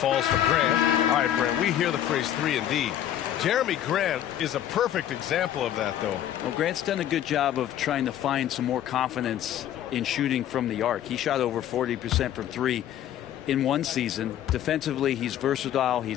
for Grant. All right, Brent, we hear the phrase 3 and D. Jeremy Grant is a perfect example of that, though. Well, Grant's done a good job of trying to find some more confidence in shooting from the arc. He shot over 40% from 3 in one season. Defensively, he's versatile.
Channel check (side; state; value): right; quieter; 11.3 dB